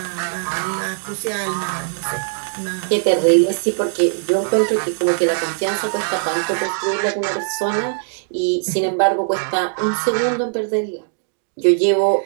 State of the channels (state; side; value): silent; left; digital silence